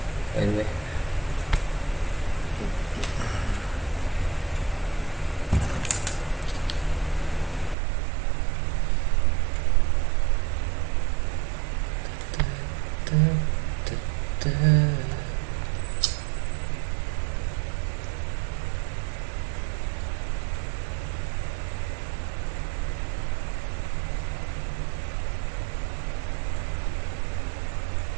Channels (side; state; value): left; drops out; at 7.8 s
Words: By the way.